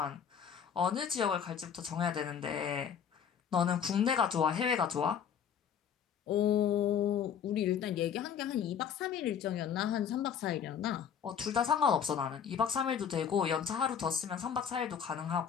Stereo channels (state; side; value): quieter; right; 7.9 dB